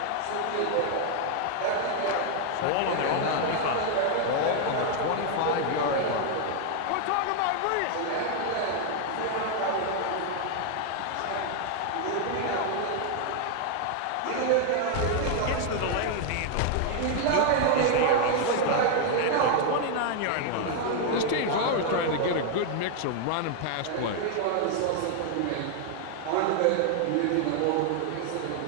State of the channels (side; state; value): both; different; correlation 0.00